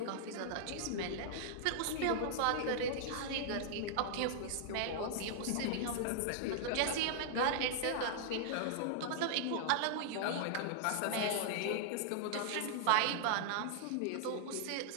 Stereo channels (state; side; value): different; both; correlation -0.01